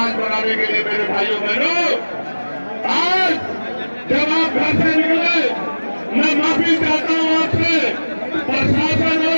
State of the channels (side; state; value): both; inverted; correlation -1.00